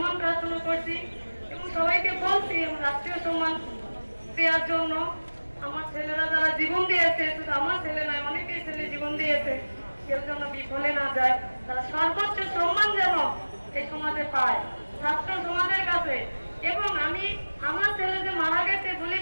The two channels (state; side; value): inverted; both; correlation -1.00